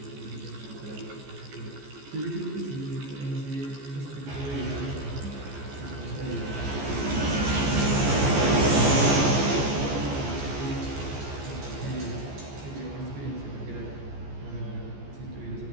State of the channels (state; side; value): late; left; 14 ms